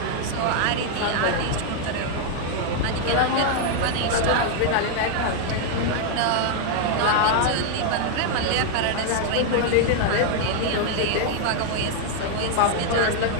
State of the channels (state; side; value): different; both; correlation 0.00